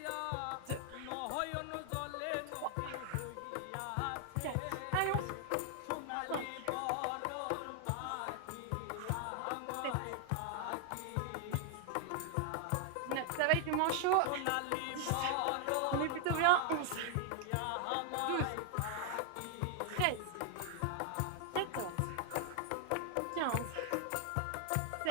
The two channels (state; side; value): different; both; correlation 0.00